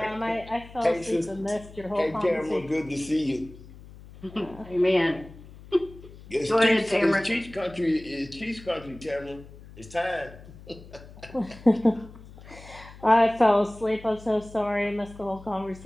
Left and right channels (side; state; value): left; noise; hum, 19 dB below the sound